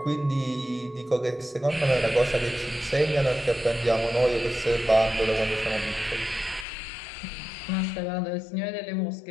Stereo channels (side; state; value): right; drops out; at 6.7 s